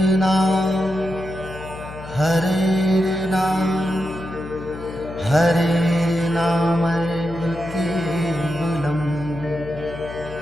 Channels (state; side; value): noise; left; hum, 14 dB below the sound